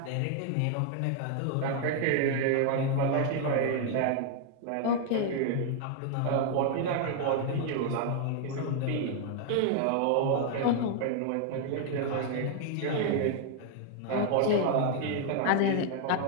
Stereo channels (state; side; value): different; both; correlation 0.00